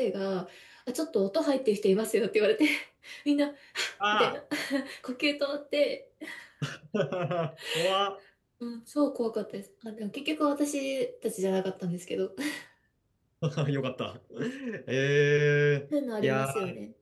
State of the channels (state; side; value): identical; both; correlation 1.00